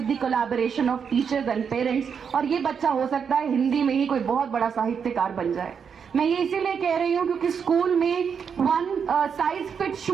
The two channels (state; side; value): quieter; left; 6.8 dB